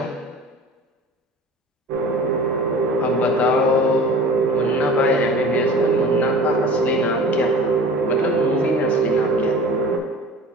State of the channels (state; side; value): normal; both; correlation 0.40